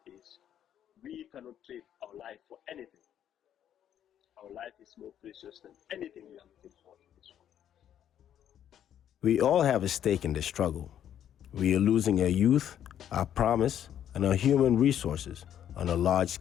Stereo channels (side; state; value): right; quieter; 10.2 dB